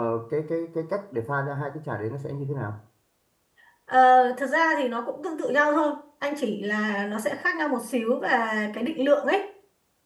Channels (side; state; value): both; identical; correlation 1.00